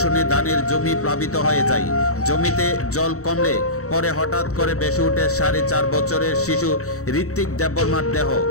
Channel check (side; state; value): right; late; 0.65 ms